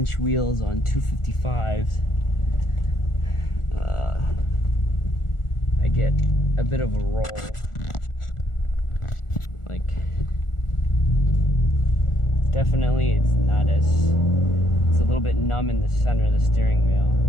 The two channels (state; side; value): late; right; 1.4 ms